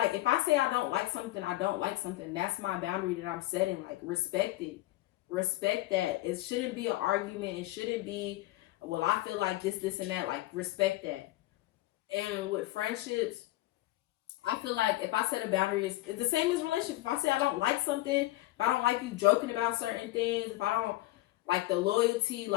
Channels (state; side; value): quieter; right; 17.7 dB